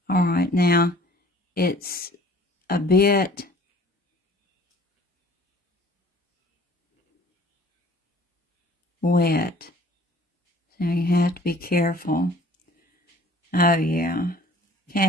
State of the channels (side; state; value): both; normal; correlation 0.51